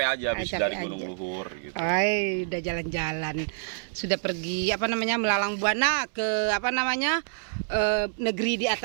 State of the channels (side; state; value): left; silent; 60 dB below the other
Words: aja habis Capek dari aja. Gunung Luhur gitu. Ay, udah jalan-jalan. Sudah pergi melalang buana ke negeri di